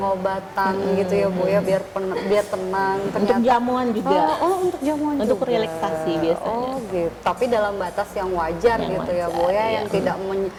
gitu ya Bu ya, biar tenang. Untuk jamuan juga. Untuk jamuan Untuk juga. relaksasi biasanya. Oh gitu. Tapi dalam batas yang wajar Yang gitu ya Bu wajar, ya, iya. yang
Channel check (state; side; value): identical; both; correlation 1.00